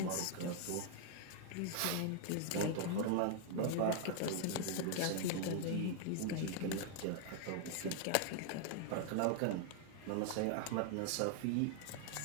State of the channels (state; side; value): different; both; correlation 0.00